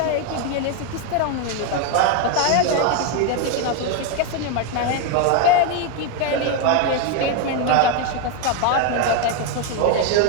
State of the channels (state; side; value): different; both; correlation 0.01